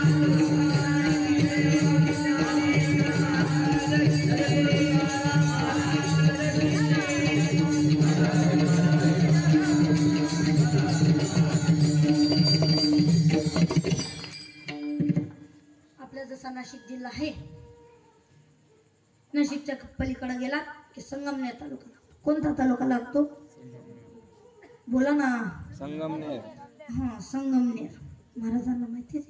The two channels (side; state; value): both; identical; correlation 1.00